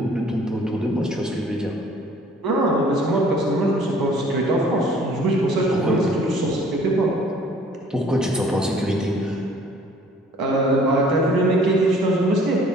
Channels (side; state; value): both; normal; correlation 0.54